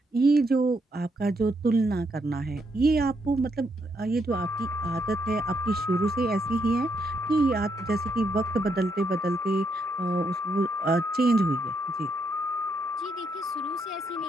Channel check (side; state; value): both; normal; correlation 0.77